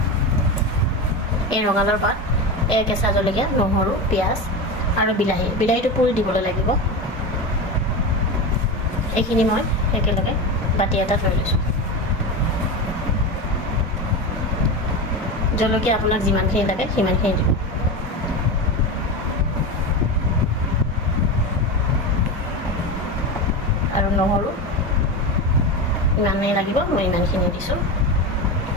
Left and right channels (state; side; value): normal; both; correlation 0.21